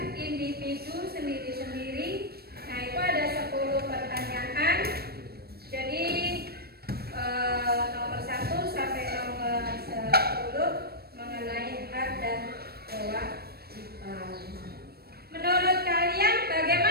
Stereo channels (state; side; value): late; left; 0.46 ms